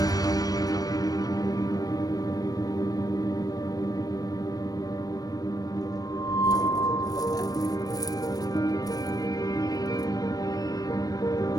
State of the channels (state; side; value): late; right; 0.18 ms